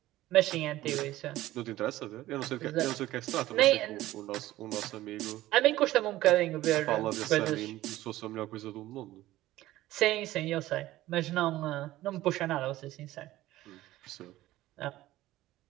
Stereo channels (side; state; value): left; quieter; 15.9 dB